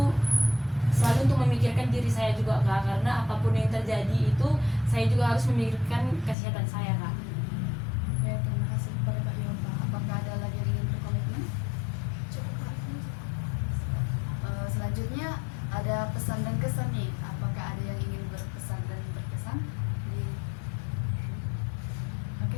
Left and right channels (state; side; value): drops out; right; at 6.4 s